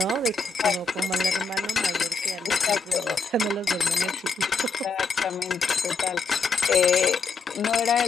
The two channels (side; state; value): right; quieter; 4.5 dB